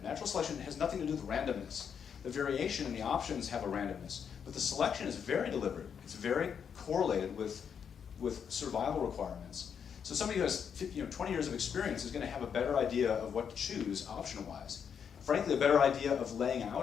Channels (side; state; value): right; quieter; 7.4 dB